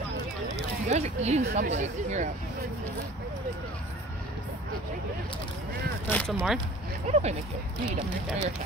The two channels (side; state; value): both; normal; correlation 0.45